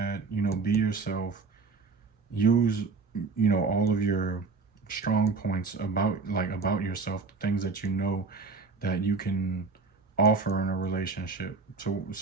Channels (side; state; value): left; quieter; 4.3 dB